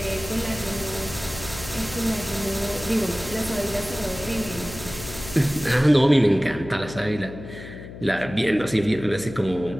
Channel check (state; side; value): noise; left; hum, 13 dB below the sound